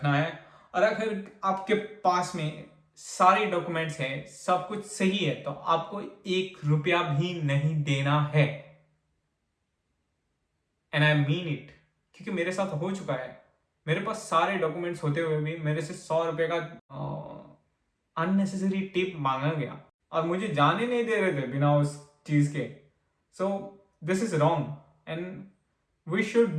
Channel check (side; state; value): both; identical; correlation 1.00